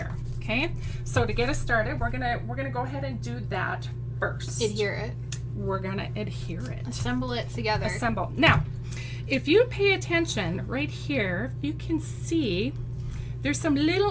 Okay. So to get us started, we're gonna go ahead and do that first. Adhere it. We're gonna adhere it. Assemble it together. Assemble. Now, if you pay attention right here, you can see there's some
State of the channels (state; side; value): identical; both; correlation 1.00